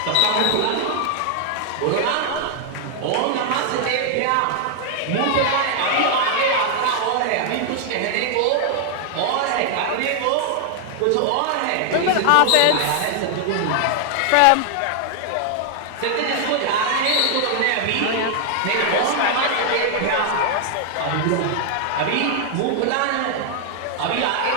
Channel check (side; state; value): both; different; correlation 0.00